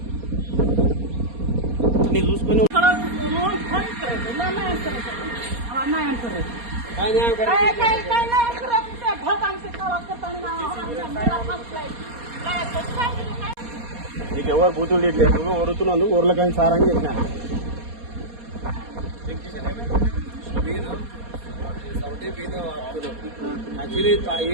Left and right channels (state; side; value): late; left; 4.2 ms